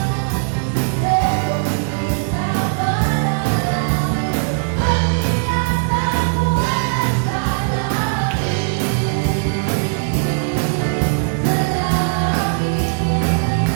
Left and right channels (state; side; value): silent; left; 57 dB below the other